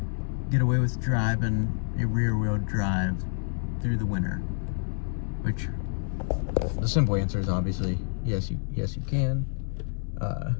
get away with driving a rear-wheel drive through the winter, which the simple answer is obviously yes you can. I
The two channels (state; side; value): silent; right; 57 dB below the other